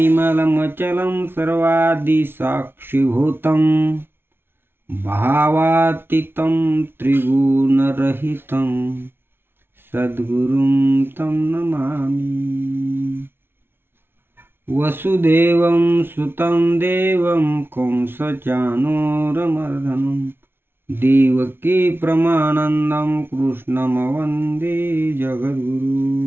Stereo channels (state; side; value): late; left; 0.11 ms